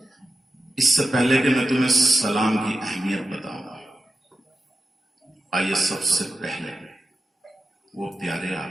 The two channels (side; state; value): both; normal; correlation 0.90